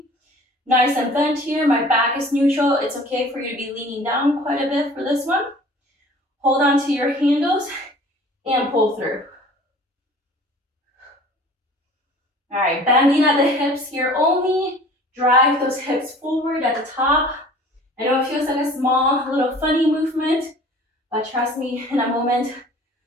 Nice and bent here, my back is neutral. It's okay for you to be leaning down quite a bit for this one. Hold on to your handles and pull through. All right, bending at the hips here only. Drive those hips forward at the top. I know it feels like a small, little funny movement, but trust me, in a moment,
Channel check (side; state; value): both; normal; correlation 0.47